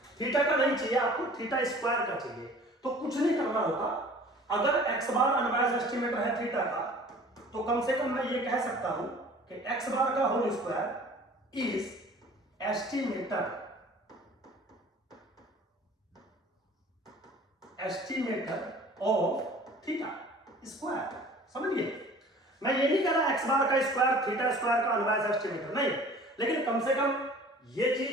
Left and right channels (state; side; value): normal; both; correlation 0.47